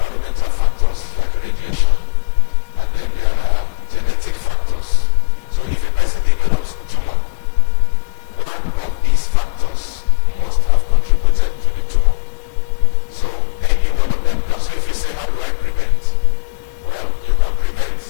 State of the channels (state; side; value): quieter; right; 32.9 dB